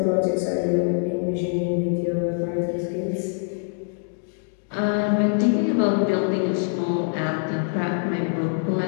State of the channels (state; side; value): silent; right; 58 dB below the other